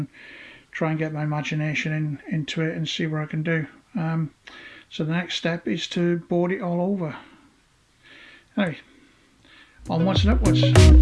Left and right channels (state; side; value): identical; both; correlation 1.00